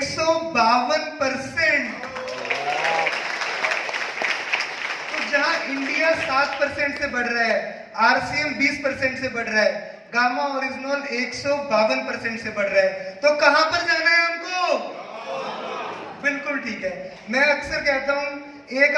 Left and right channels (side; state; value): both; identical; correlation 1.00